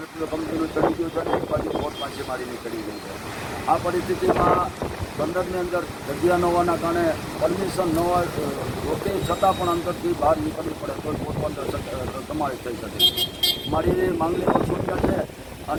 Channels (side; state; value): both; identical; correlation 1.00